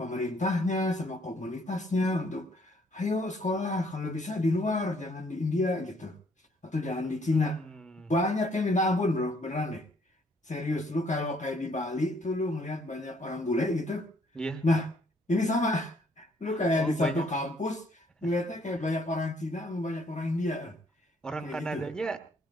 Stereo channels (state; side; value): normal; both; correlation 0.66